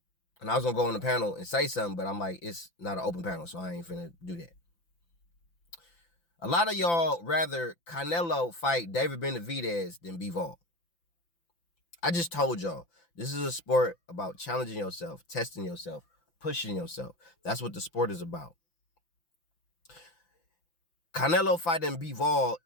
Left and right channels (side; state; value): right; late; 5.9 ms